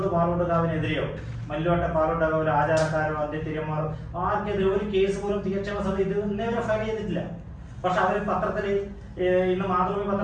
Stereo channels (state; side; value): identical; both; correlation 1.00